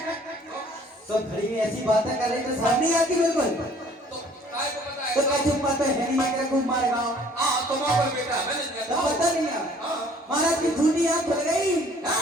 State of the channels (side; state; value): both; normal; correlation 0.56